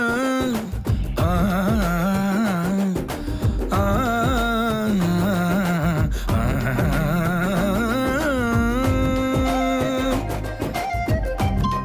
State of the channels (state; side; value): identical; both; correlation 1.00